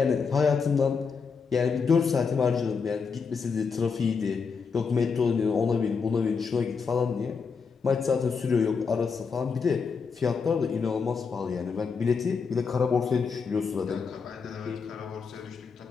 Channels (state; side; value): quieter; right; 5.5 dB